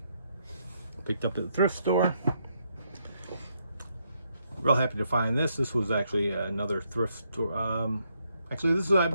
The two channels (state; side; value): inverted; both; correlation -0.77